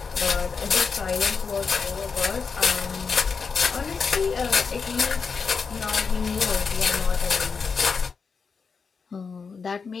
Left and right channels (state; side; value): quieter; right; 5.4 dB